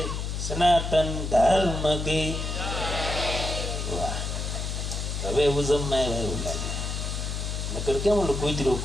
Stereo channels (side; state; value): left; noise; hum, 3 dB below the sound